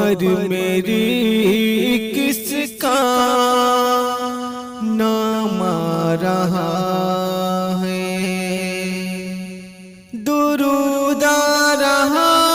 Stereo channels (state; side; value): identical; both; correlation 1.00